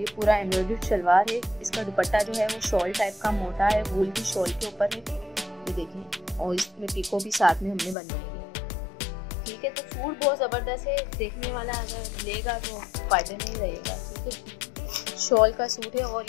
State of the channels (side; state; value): right; drops out; at 8.0 s